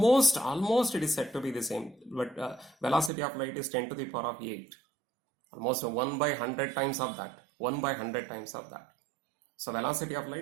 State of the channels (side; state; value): left; drops out; at 3.1 s